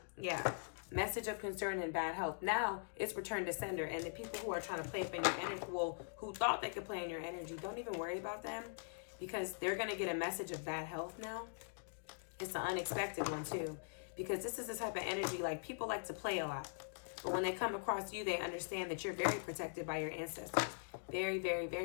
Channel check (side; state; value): right; silent; digital silence